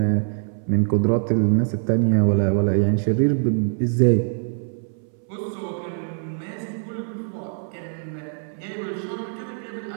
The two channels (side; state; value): left; silent; 63 dB below the other